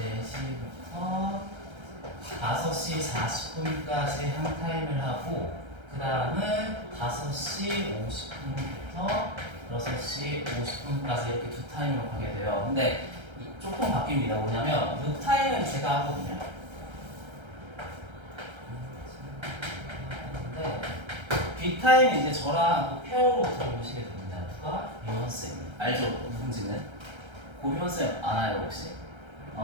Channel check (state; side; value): late; left; 1.3 ms